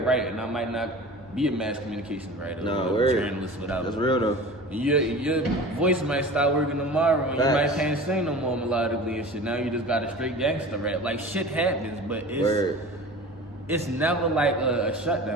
write, and I might not be a mass communications writer or a journalist, whatever. That's real though. Your voice might start working tomorrow, and you might can't sing no more melodically and shit. Now you just got a straight gangster rap. Like shit happens, but it's never like a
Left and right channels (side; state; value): both; normal; correlation 0.37